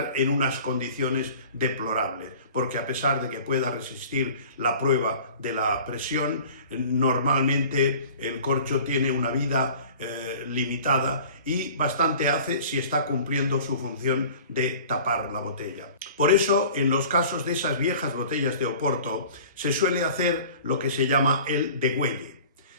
en unas condiciones deplorables, porque a pesar de que pueda resistir la prueba de la presión, normalmente el corcho tiene una vida limitada y bastante hace si está cumpliendo su función de tapar la botella. Por eso, en los casos de esas viejas botellas de Oporto, se suele hacer lo que se llama el degüelle.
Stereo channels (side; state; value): both; inverted; correlation -0.45